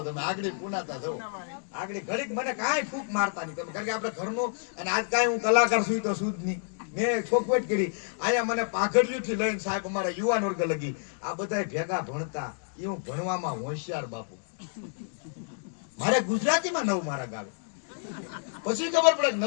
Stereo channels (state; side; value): silent; right; digital silence